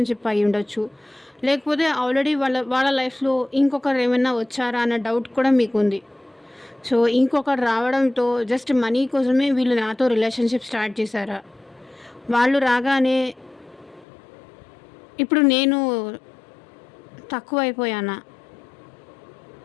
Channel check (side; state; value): right; drops out; at 14.1 s